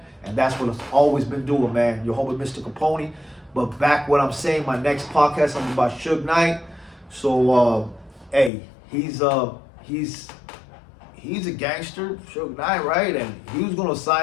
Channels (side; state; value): right; drops out; at 8.5 s